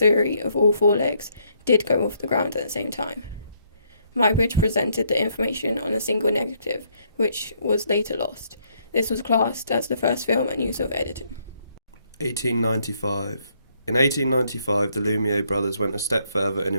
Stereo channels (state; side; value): inverted; both; correlation -0.71